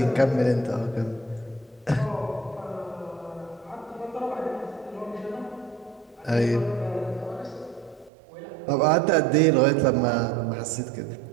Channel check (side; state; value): left; drops out; at 8.1 s